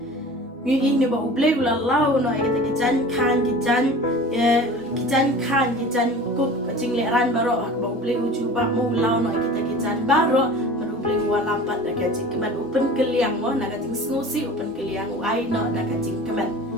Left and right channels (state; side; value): normal; both; correlation 0.40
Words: ni ni ba ublei u la lao no ka ta ki jan khan ki jan kup ka jing le ran ba ro ba ublei u chuba mo lao no ka ta ki jan ba ro ublei wa lampat da ka jing kemen open keliang mo na ka jing snosi open keliang u ai no na ka jing kemen